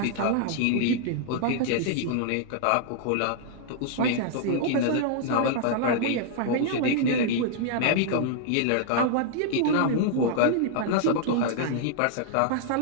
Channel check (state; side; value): different; both; correlation -0.01